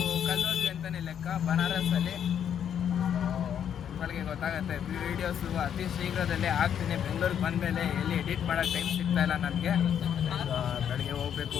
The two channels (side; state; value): right; quieter; 8.9 dB